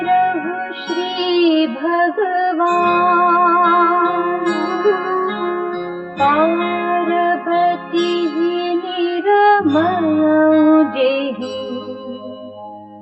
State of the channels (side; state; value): both; identical; correlation 1.00